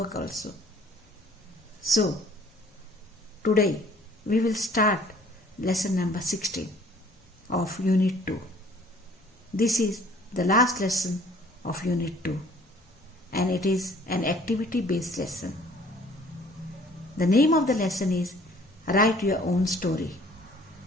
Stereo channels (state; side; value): normal; both; correlation 0.55